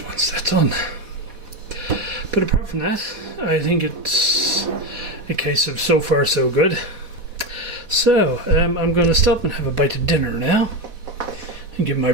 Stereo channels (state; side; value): late; left; 4.1 ms